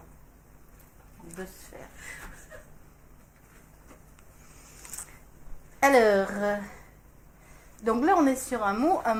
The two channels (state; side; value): identical; both; correlation 1.00